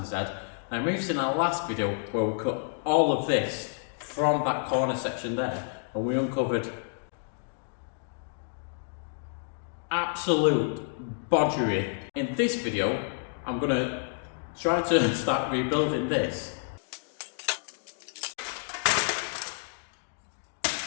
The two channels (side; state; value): right; silent; digital silence